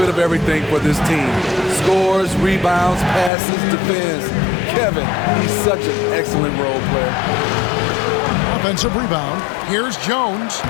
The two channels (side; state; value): right; drops out; at 3.3 s